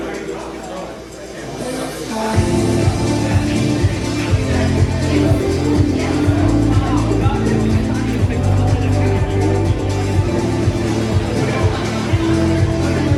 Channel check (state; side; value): identical; both; correlation 1.00